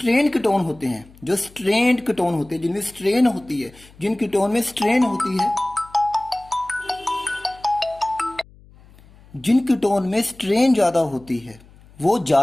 कीटोन होते हैं, जो स्ट्रेन्ड कीटोन होते हैं, जिनमें स्ट्रेन होती है, जिन कीटोन में स्ट्रेन होती है, जिन कीटोन में स्ट्रेन ज़्यादा होती है वो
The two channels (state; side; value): noise; left; hum, 25 dB below the sound